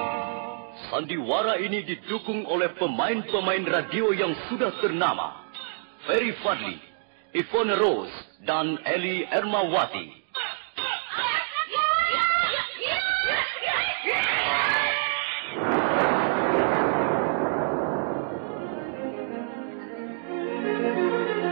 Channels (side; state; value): left; silent; digital silence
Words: Sandiwara ini didukung oleh pemain-pemain radio yang sudah ternama. Ferry Fadli, Ivone Rose, dan Eli Ermawati.